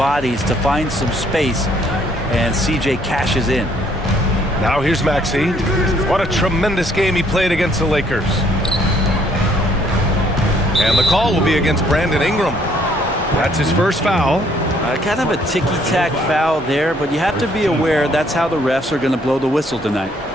to find some space, and CJ cashes in. Now here's Maxey. What a tremendous game he played against the Lakers. And the call will be against Brandon Ingram. That's his first foul. Kind of a ticky-tack foul there, but you have to be aware that's how the refs are going to blow the whistle tonight.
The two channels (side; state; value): both; normal; correlation 0.65